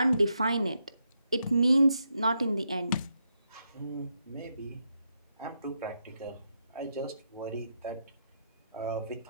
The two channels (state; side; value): inverted; both; correlation -0.82